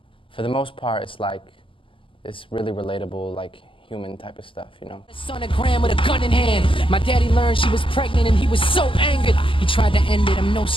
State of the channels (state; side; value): late; right; 0.25 ms